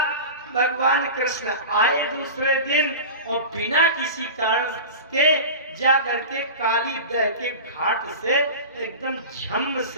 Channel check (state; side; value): inverted; both; correlation -0.31